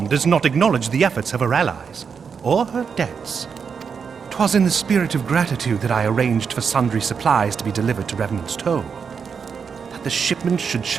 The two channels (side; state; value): left; quieter; 6.2 dB